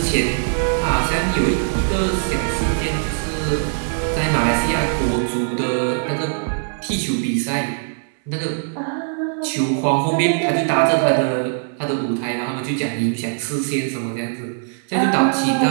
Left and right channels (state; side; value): silent; left; 65 dB below the other